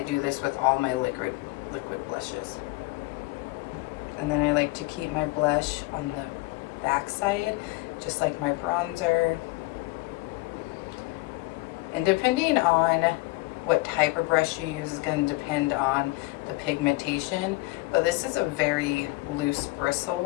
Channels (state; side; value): quieter; right; 22.7 dB